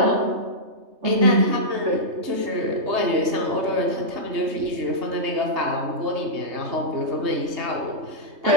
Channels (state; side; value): late; left; 3.3 ms